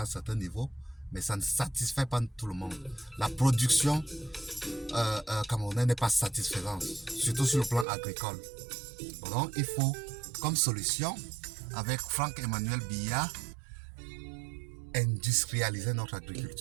un certain niveau, mais ça ne satisfait pas tout le monde. La production camerounaise n'est pas satisfaisante, surtout sur le plan agricole. Donc, il faut, comme solution, avec Franck-Emmanuel Biya, industrialiser notre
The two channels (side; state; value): left; drops out; at 7.9 s